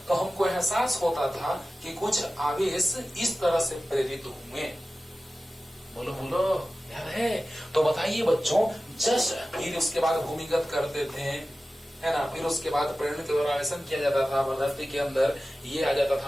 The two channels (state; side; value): normal; both; correlation 0.95